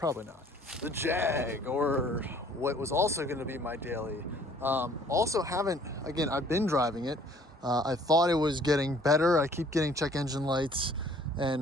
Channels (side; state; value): both; normal; correlation 0.57